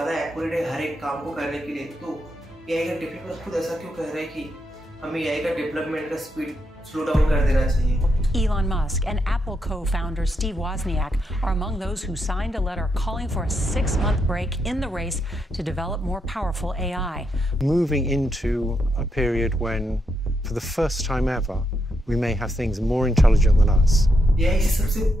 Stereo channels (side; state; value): both; normal; correlation 0.81